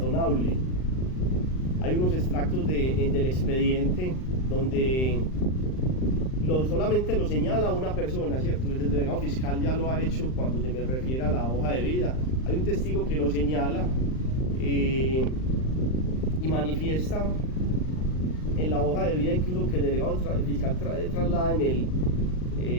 Hay unos extractos del expediente donde solamente lo señala una persona, ¿cierto? El delegado fiscal ya lo ha hecho cuando se me refiere a la hoja de vida. Hay un testigo que lo señala y manifiesta en la hoja de vida, incluso que el delegado fiscal traslada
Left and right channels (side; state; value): right; late; 39 ms